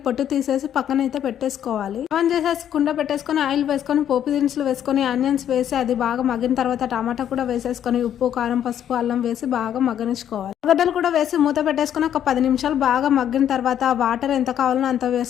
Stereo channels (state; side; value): quieter; right; 10.0 dB